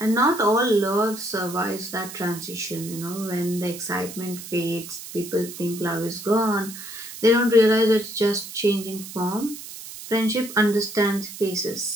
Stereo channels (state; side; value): noise; right; hiss, 12 dB below the sound